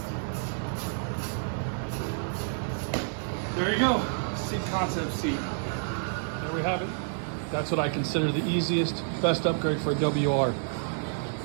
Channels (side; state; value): left; silent; digital silence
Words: There you go, seat concept seat. There we have it. That's what I consider the easiest, best upgrade for a WR.